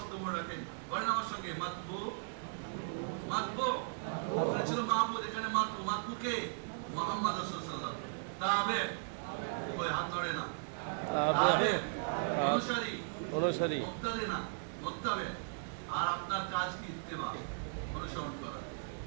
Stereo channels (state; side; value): silent; left; digital silence